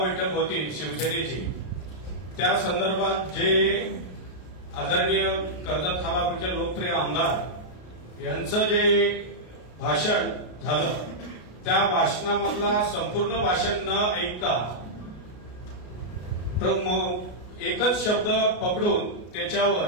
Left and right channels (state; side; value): late; right; 33 ms